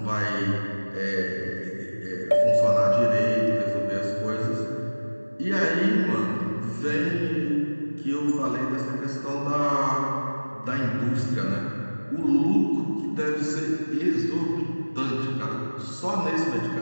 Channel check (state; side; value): inverted; both; correlation -1.00